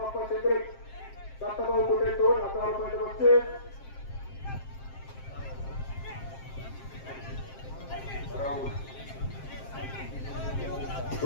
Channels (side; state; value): right; late; 7.5 ms